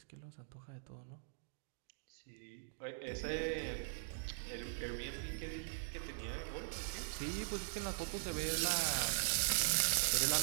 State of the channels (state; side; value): silent; left; digital silence